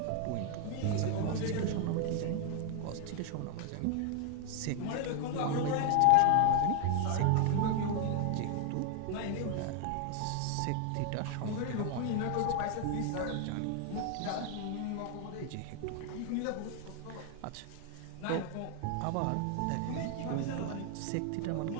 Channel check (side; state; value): both; different; correlation 0.00